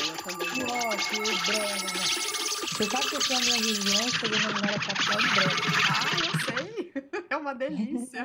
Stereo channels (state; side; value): identical; both; correlation 1.00